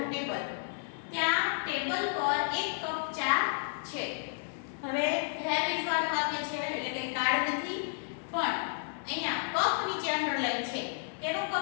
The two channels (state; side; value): silent; right; digital silence